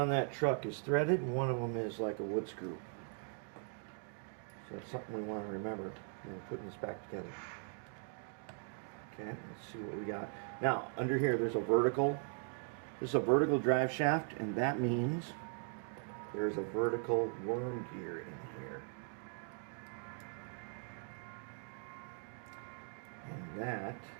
that truck is threaded, and one of them is like a wood screw. So that's something we want to remember when we're putting this back together. Okay, let's see what we got. Now, under here there's a vertical. This is a vertical drive shaft, and that means there's a vertical worm gear in here. And that,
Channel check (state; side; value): silent; left; 51 dB below the other